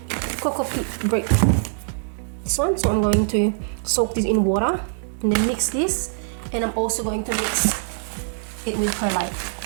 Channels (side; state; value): left; silent; digital silence